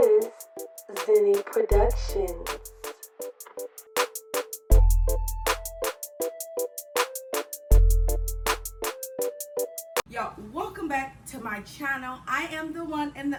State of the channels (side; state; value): both; identical; correlation 1.00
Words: Zinni Productions. Y'all, welcome back to my channel. I am the one and